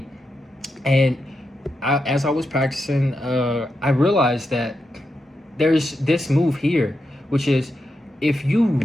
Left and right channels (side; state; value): both; normal; correlation 0.86